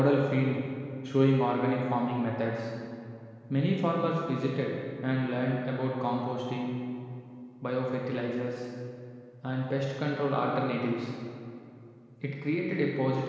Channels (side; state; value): both; identical; correlation 1.00